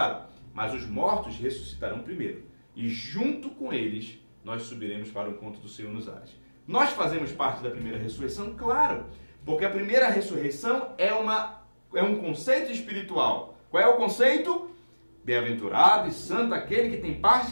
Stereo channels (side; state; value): both; inverted; correlation -1.00